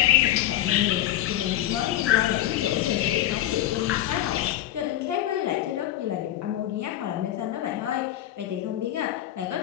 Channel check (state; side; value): quieter; right; 13.2 dB